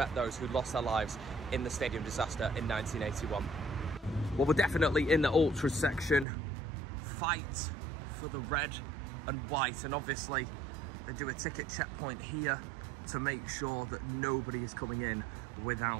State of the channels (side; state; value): left; drops out; at 6.2 s